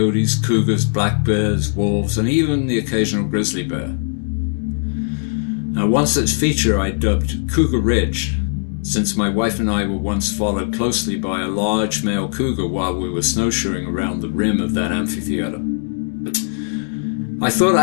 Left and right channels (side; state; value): right; silent; digital silence